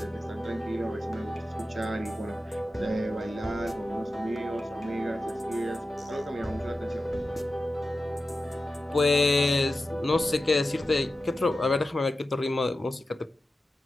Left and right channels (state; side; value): normal; both; correlation 0.93